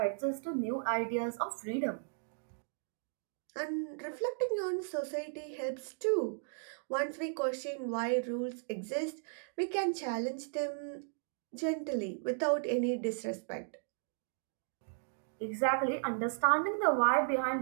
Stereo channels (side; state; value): left; silent; digital silence